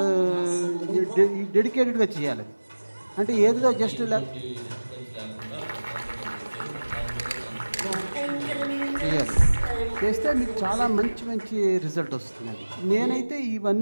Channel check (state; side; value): inverted; both; correlation -1.00